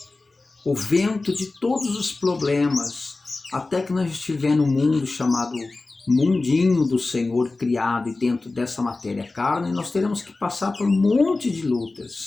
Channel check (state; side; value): quieter; right; 3.4 dB